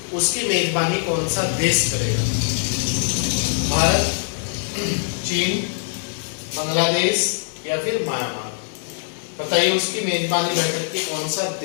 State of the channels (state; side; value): silent; right; digital silence